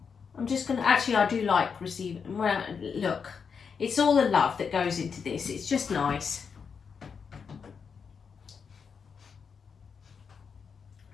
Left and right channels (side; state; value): right; quieter; 6.1 dB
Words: I'm just gonna, actually I do like receiving, well, look, it's all the love that goes into this. It's just nice.